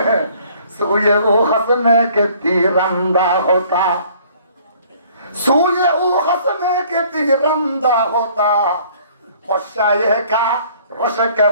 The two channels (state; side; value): inverted; both; correlation -0.57